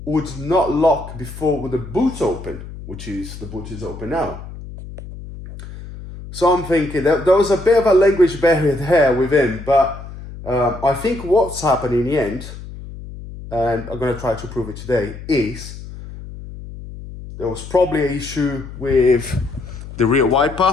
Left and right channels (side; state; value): left; noise; hum, 13 dB below the sound